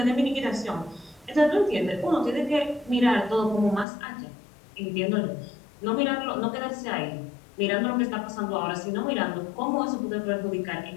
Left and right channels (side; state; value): right; drops out; at 3.9 s